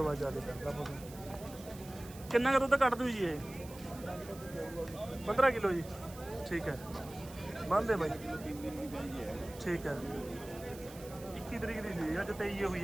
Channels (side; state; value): right; noise; hiss, 18 dB below the sound